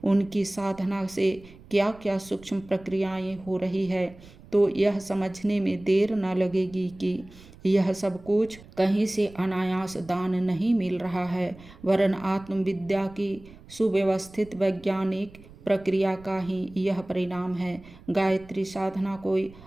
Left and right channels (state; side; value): noise; right; rumble, 21 dB below the sound